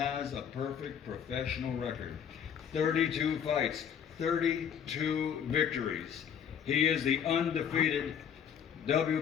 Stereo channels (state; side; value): quieter; right; 8.2 dB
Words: a perfect professional record. 32 fights, 32 victories. He is the undefeated